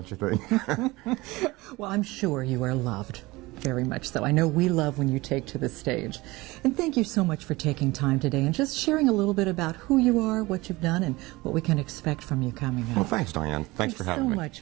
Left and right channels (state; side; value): quieter; left; 21.3 dB